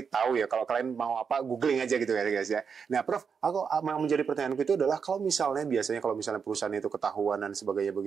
tahu ya kalau kalian mau apa googling aja gitu ya guys ya. Nah Prof, aku yang menjadi pertanyaanku itu adalah kalau misalnya perusahaan itu ketahuan dan sebagainya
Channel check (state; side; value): quieter; left; 6.2 dB